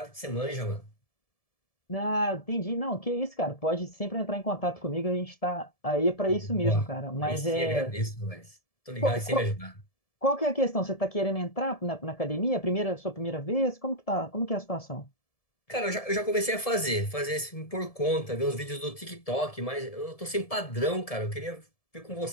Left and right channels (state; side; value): late; right; 1.7 ms